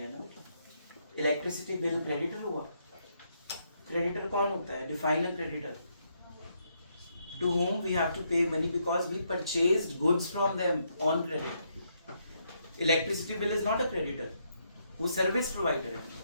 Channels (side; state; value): both; inverted; correlation -0.76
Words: ना, इलेक्ट्रिसिटी बिल क्रेडिटर हुआ। क्रेडिटर कौन होता है, define a creditor, to whom we have to pay money because we purchased goods from them on credit. Electricity bill is not a creditor, वो service provider है,